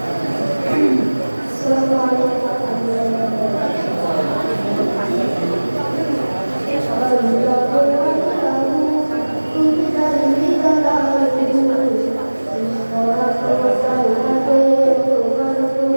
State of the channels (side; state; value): both; inverted; correlation -1.00